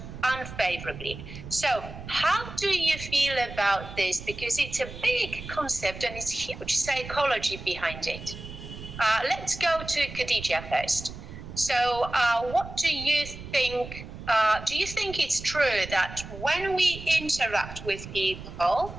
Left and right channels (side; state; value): right; noise; rumble, 12 dB below the sound